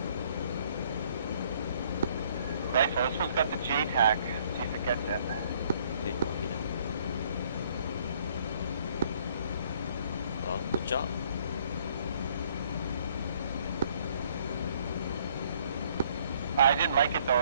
Right, so this one's got the J tag. See if it gets in. Okay, copy that. Well, good job. I didn't like it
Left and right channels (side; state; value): both; inverted; correlation -0.63